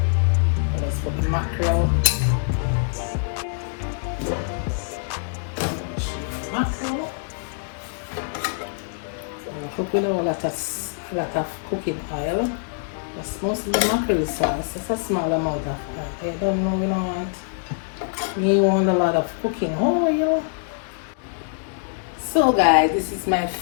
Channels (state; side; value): silent; right; digital silence